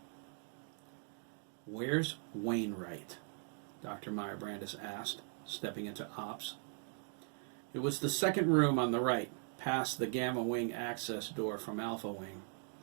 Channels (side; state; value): left; silent; 51 dB below the other